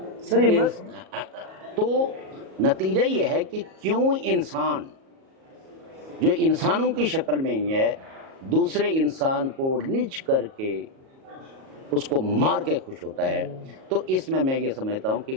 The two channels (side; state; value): left; late; 37 ms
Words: سر یہ تو نتیجہ یہ ہے کہ کیوں انسان جو انسانوں کی شکل میں ہی ہے دوسرے انسان کو نچ کر کے اس کو مار کے خوش ہوتا ہے، تو اس میں یہ سمجھتا ہوں کہ